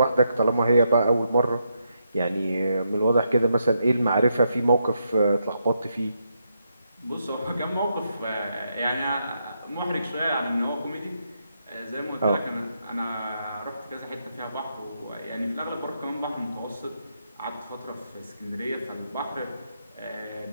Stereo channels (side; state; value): both; inverted; correlation -0.80